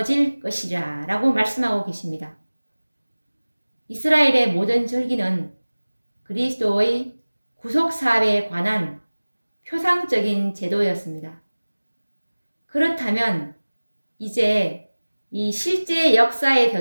것이라 라고 말씀하고 계십니다. 이스라엘의 모든 절기는 그리스도의 구속사업에 관한 표상적인 제도였습니다. 그렇다면 이제 이 실제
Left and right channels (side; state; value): both; inverted; correlation -1.00